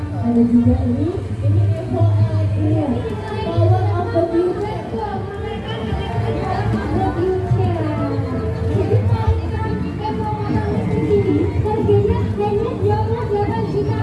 Ada juga ini Evo Electric Power of the Future. Harganya hanya 28 juta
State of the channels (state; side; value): identical; both; correlation 1.00